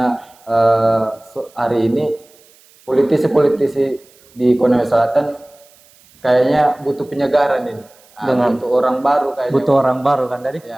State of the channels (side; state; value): right; noise; hiss, 29 dB below the sound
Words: hari ini politisi-politisi di Konawe Selatan kayaknya butuh penyegaran ini. Butuh orang baru kayaknya. Butuh orang baru kan tadi?